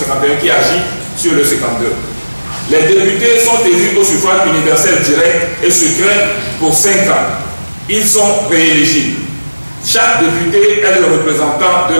qui agit sur le 52. Les députés sont élus au suffrage universel direct et secret pour 5 ans. Ils sont rééligibles. Chaque député est le représentant de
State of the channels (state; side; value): inverted; both; correlation -1.00